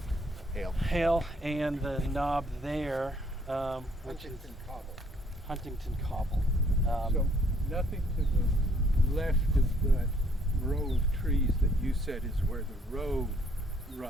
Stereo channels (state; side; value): normal; both; correlation 0.64